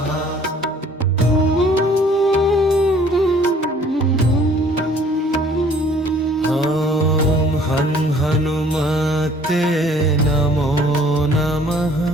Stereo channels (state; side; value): normal; both; correlation 0.56